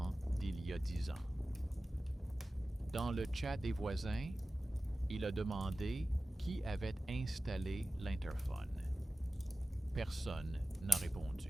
d'il y a 10 ans. Dans le chat des voisins, il a demandé qui avait installé l'interphone. Personne n'a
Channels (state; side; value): normal; both; correlation 0.95